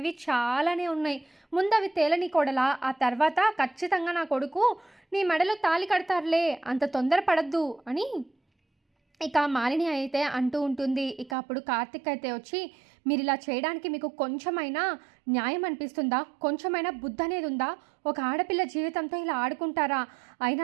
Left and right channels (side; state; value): left; drops out; at 11.4 s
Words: చాలానే ఉన్నాయి. ముందు అవి తేలని కొడలా, ఆ తర్వాత ఖచ్చితంగా నా కొడుకు నీ మెడలో తాళి కడతారులే, అంత తొందరపడద్దు అని ఇక మాలిని అయితే అంటూ ఉంటుంది. ఇక అప్పుడు కార్తిక్ అయితే వచ్చి, మీరు ఇలా చేయడానికి మీకు కొంచెమైనా న్యాయం అనిపిస్తుందా? కొంచెమైనా బుద్ధి అనేది ఉందా? ఒక ఆడపిల్ల జీవితంతో ఇలా ఆడుకుంటారా?